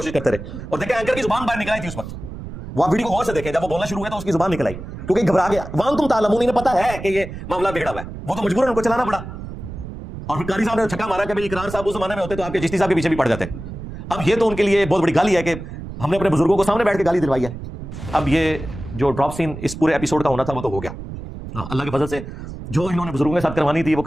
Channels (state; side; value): noise; right; rumble, 10 dB below the sound